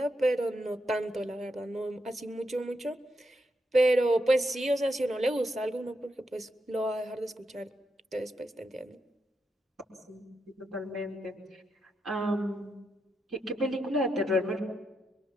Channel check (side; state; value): both; normal; correlation 0.83